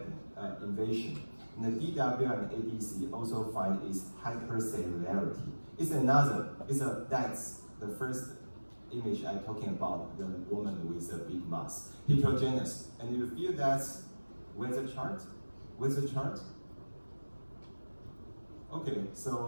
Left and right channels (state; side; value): inverted; both; correlation -1.00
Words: invasion. And the DWI and ADC also find is hypercellularity. That's the first image I'm talking about, the woman with a big mass, heterogeneous. And you feel that with the chart? With the chart? Okay,